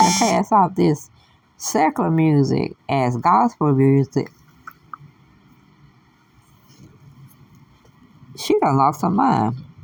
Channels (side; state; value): both; identical; correlation 1.00